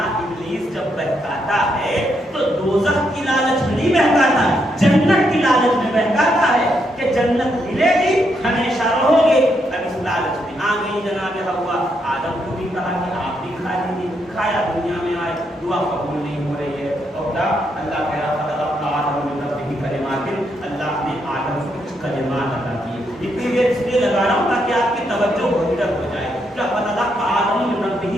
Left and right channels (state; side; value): normal; both; correlation 0.78